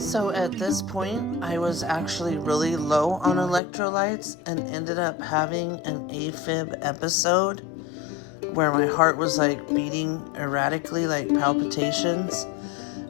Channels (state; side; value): drops out; right; at 3.6 s